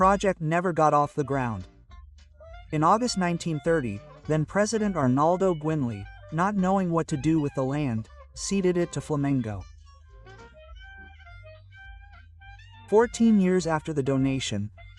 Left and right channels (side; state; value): both; identical; correlation 1.00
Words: never got off the ground. In August 1930, then President Arnaldo Guinle, not knowing what to do with the land, ceded it to Flamengo. 14 years after the donation,